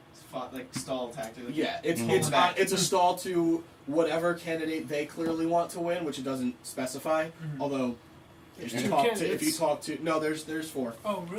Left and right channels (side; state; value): both; identical; correlation 1.00